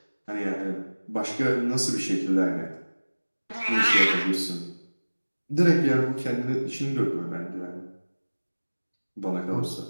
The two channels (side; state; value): both; inverted; correlation -1.00